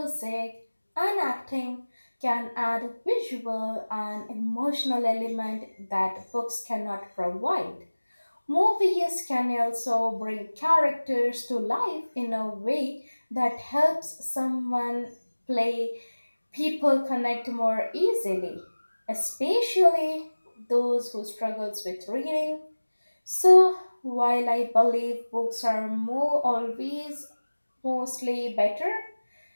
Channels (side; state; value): both; inverted; correlation -1.00